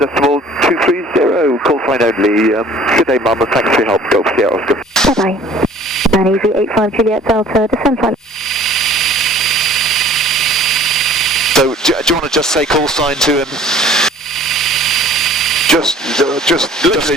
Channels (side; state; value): both; normal; correlation 0.51